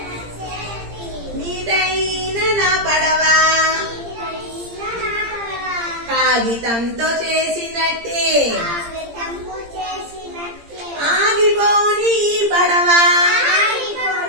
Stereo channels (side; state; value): left; late; 17 ms